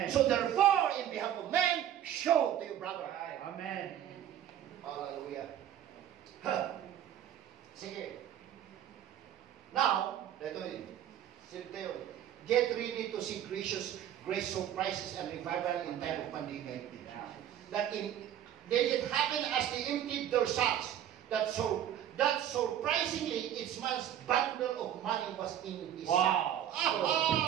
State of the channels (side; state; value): left; quieter; 10.7 dB